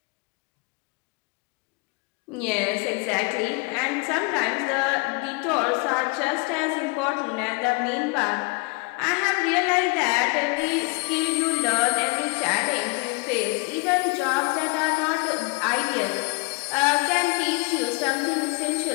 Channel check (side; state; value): right; quieter; 28.8 dB